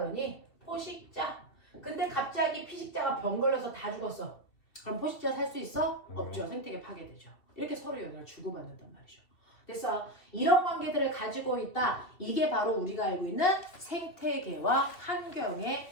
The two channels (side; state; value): right; late; 2.7 ms